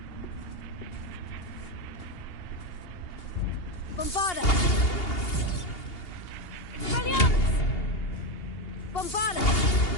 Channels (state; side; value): late; right; 2.8 ms